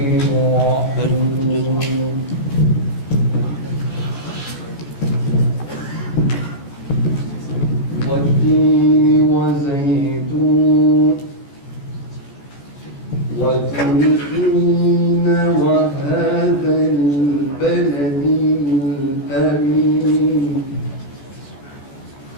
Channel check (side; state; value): right; late; 15 ms